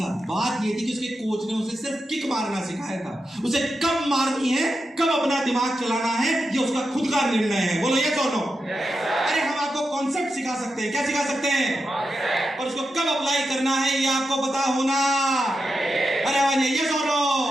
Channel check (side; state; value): both; normal; correlation 0.88